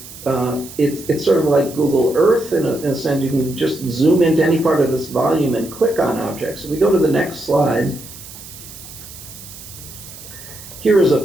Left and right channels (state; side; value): noise; right; hiss, 16 dB below the sound